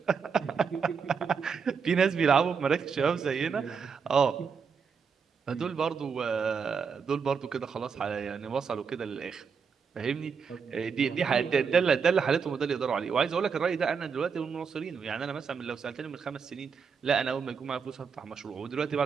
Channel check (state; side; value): quieter; left; 6.0 dB